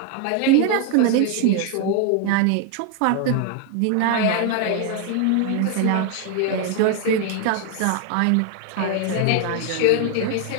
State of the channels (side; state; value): both; different; correlation 0.01